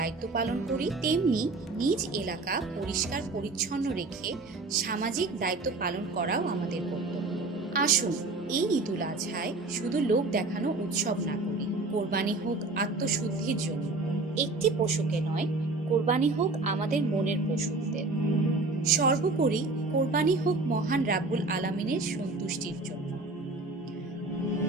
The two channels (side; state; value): left; quieter; 3.4 dB